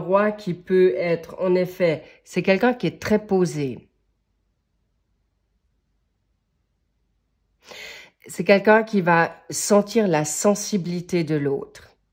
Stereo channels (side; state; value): both; identical; correlation 1.00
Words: qui peut être, en effet, c'est quelqu'un qui est très posé. C'est quelqu'un qui va sentir la sensibilité de l'autre.